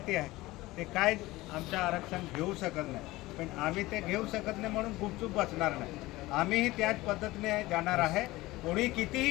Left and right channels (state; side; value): quieter; right; 19.1 dB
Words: आहे ते काय आमचं आरक्षण घेऊ शकत नाही. पण आम्ही ते घेऊ शकत नाही म्हणून गुपचूप बसणार नाही. आम्हीही त्याच पद्धतीने जाणार आहे. कोणी कितीही